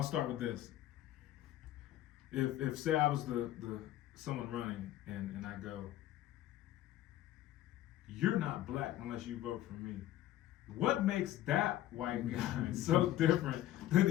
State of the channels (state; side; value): quieter; right; 13.8 dB